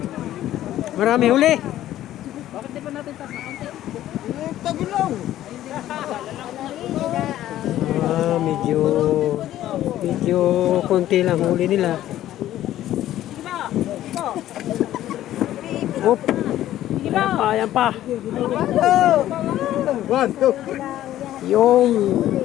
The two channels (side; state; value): right; quieter; 13.2 dB